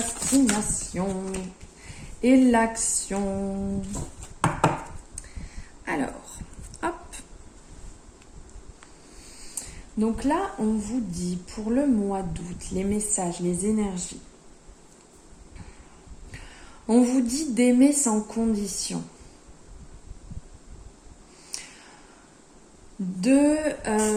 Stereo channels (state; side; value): identical; both; correlation 1.00